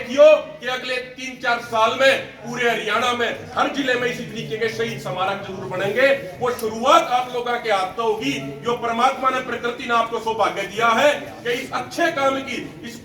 कि अगले 3-4 साल में पूरे हरियाणा में हर जिले में इसी तरीके के शहीद स्मारक जरूर बनेंगे। वो शुरुआत आप लोगों के हाथ से होगी, जो परमात्मा ने प्रकृति ने आपको सौभाग्य दिया है कि इस अच्छे काम की, इस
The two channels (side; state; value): both; identical; correlation 1.00